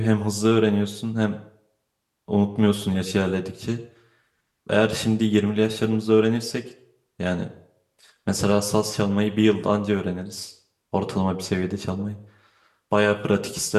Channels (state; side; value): identical; both; correlation 1.00